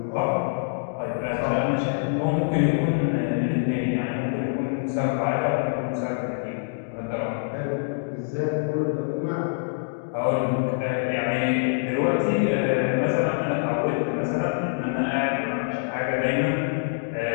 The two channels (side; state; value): right; silent; digital silence